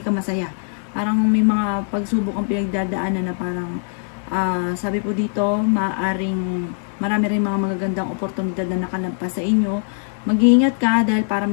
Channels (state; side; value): silent; right; 60 dB below the other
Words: ka masaya. Parang may mga pagsubok ang pinagdadaanan na parang sabi po dito marami rin mga magagandang oportunidad na nakalampas sa inyo. Mag-iingat ka dahil para